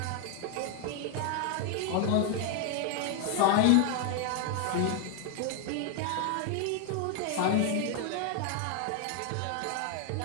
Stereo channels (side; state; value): both; different; correlation 0.00